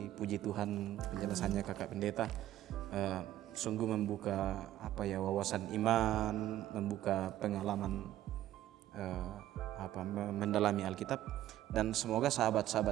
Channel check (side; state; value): left; quieter; 13.3 dB